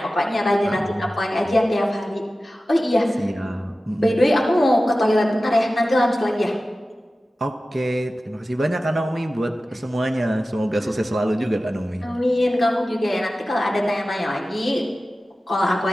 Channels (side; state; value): both; normal; correlation 0.95